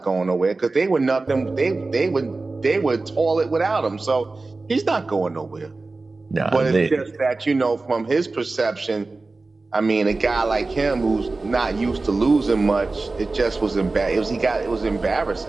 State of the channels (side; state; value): left; quieter; 3.5 dB